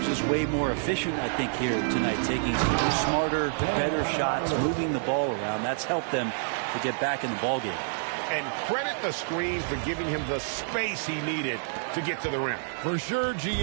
just way more efficient, I think, here tonight, taking smarter, better shots, moving the ball around. That's helped them to get back in the ballgame. And credit the screen for giving him the space he needed to get to the rim. For sure,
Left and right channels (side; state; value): left; silent; digital silence